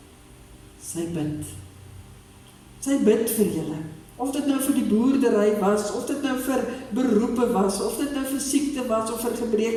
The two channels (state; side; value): identical; both; correlation 1.00